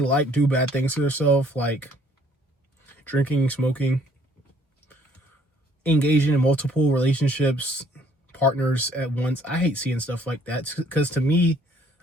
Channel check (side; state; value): both; normal; correlation 0.62